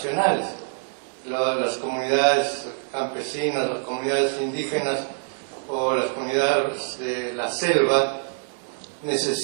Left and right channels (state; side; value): silent; left; digital silence